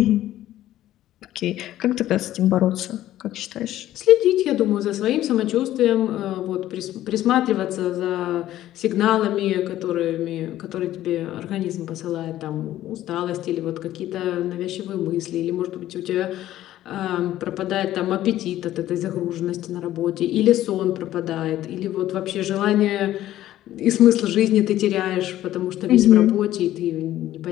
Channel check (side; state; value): right; quieter; 13.6 dB